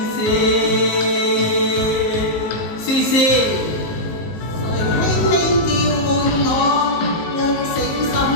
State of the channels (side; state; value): right; late; 19 ms